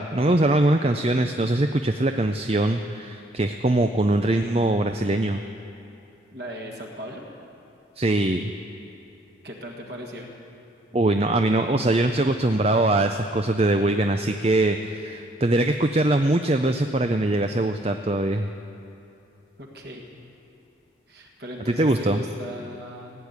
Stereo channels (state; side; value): normal; both; correlation 0.65